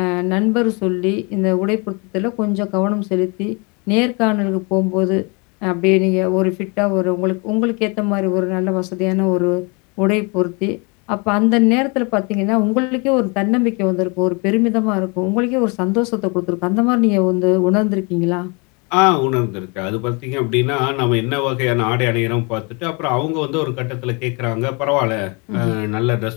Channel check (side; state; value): right; quieter; 31.3 dB